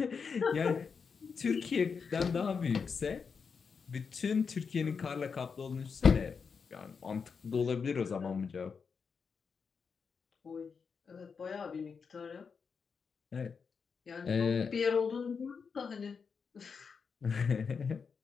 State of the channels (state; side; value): quieter; right; 5.7 dB